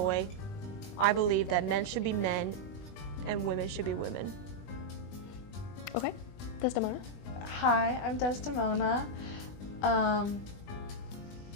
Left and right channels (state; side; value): late; right; 20 ms